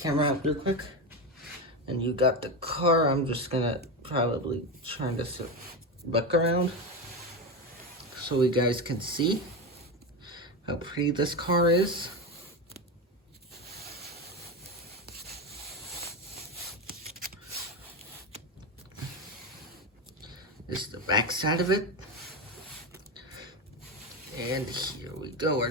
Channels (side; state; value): both; normal; correlation 0.17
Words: out real quick. And you got the car. I'm just gonna probably turn this back around so you guys can see how pretty this car is. This is the back side of it. And here we go.